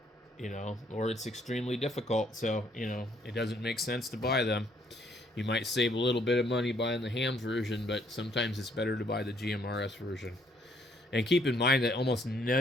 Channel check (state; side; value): normal; both; correlation 0.67